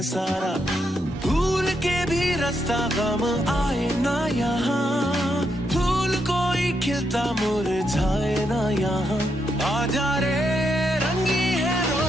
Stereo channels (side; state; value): both; normal; correlation 0.81